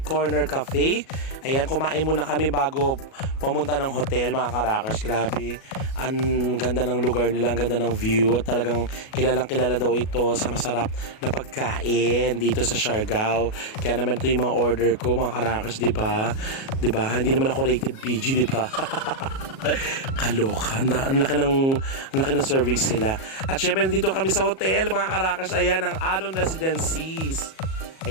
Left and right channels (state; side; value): late; right; 37 ms